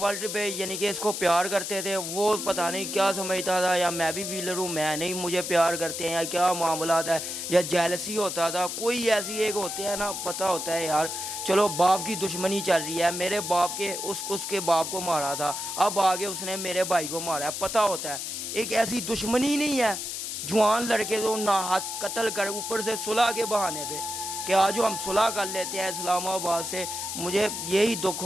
ورلڈ پہ, یعنی کہ اس کو پیار کرتے تھے. وہ پتہ نہیں کیا سمجھتا تھا یا میں بھی ویلر ہوں, میں نہیں مجھے پیار کرتے ہیں یا کیا معاملات ہے, یا جیلسی ہوتا تھا. کوئی ایسی ایک ہوتے ہیں نا, پتہ ہوتا ہے یار چلو باپ کی دشمنی چل رہی ہے, میرے باپ کے اس کے باپ کو مارا تھا, اب آگے اس نے میرے بھائی کو مارا ہے. پتہ ہوتا ہے ایک ایسی دشمنی نہیں ہے. جوان لڑکے تو نہ ہاتھ قتل کر اوپر سے صلح کے بہانے پہ کہ آج ہم صلح کر لیتے ہیں اسلام آباد سے. مجھے یہی دکھ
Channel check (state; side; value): noise; left; hiss, 5 dB below the sound